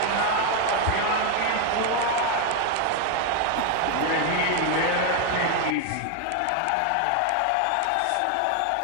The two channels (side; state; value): both; different; correlation 0.01